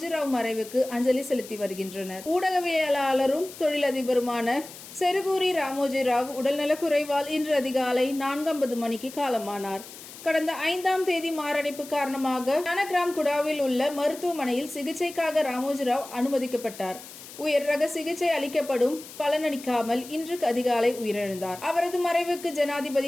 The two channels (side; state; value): left; noise; hiss, 16 dB below the sound